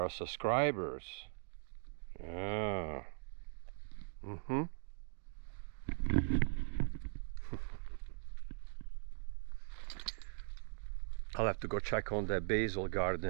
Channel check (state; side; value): silent; left; digital silence